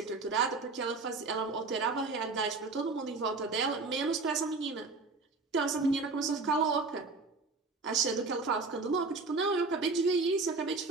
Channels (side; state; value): left; quieter; 3.9 dB